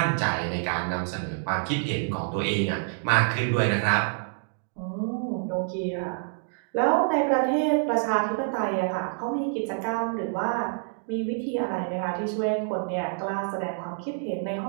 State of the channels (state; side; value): silent; left; digital silence